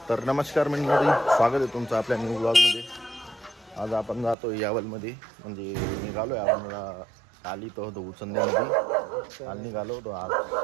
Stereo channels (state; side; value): drops out; left; at 4.4 s